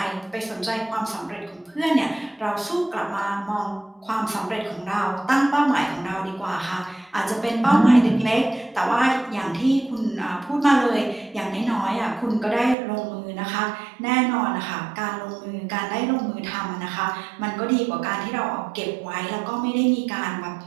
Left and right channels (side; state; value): left; drops out; at 12.8 s